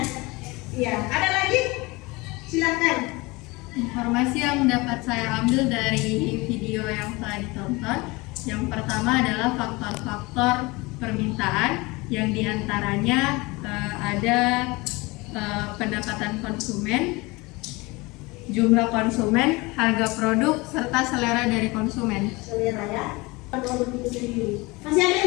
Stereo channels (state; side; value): quieter; right; 23.9 dB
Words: Iya. Ada lagi? Silakan. Informasi yang dapat saya ambil dari video video yang telah ditonton. Yang pertama adalah faktor-faktor permintaan, yang diantaranya ada pendapatan konsumen, jumlah konsumen, harga produk, serta selera dari konsumen. Selera ya, produk itu sendiri. Masih ada